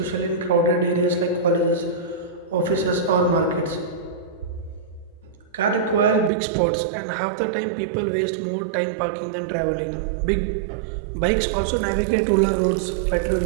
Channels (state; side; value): drops out; left; at 6.3 s